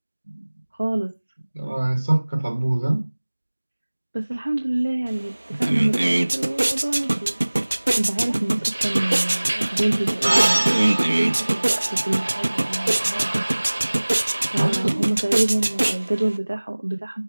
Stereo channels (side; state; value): both; inverted; correlation -1.00